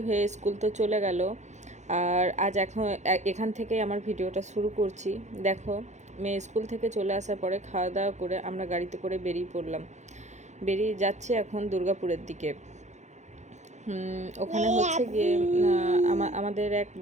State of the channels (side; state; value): left; late; 0.34 ms